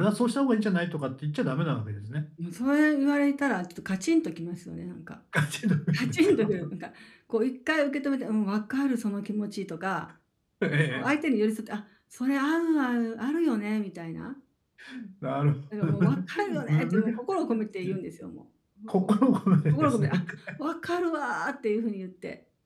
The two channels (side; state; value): both; identical; correlation 1.00